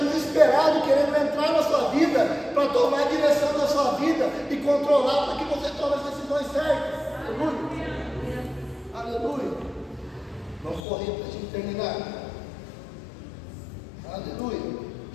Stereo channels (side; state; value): right; drops out; at 10.8 s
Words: querendo entrar na sua vida, para tomar a direção da sua vida e controlar para que você tome as decisões certas. Aleluia. Aleluia. Vamos correr para a gente terminar. Aleluia.